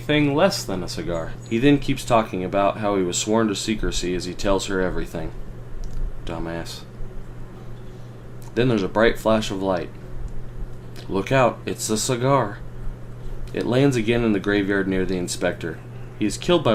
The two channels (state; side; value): identical; both; correlation 1.00